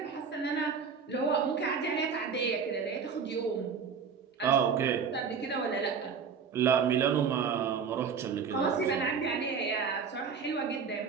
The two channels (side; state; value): left; quieter; 6.2 dB